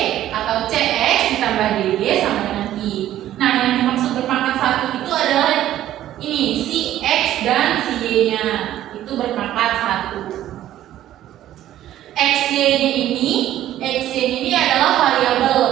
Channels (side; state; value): left; quieter; 12.8 dB